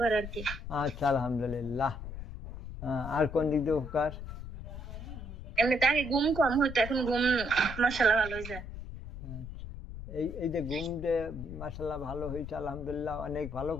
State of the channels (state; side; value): noise; left; rumble, 10 dB below the sound